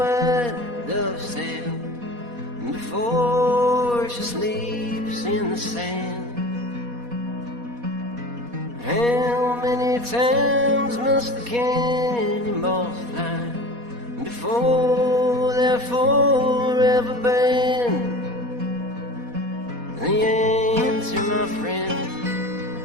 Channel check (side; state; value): left; late; 4.2 ms